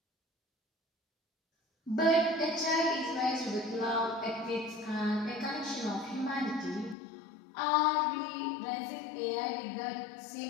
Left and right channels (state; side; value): drops out; right; at 7.0 s